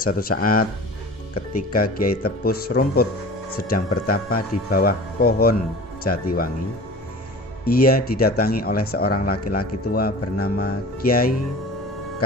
saat ketika Kiai Tepus Rumput sedang bertapa di bawah pohon Jatiwangi, ia didatangi oleh seorang laki-laki tua bernama Kiai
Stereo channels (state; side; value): normal; both; correlation 0.39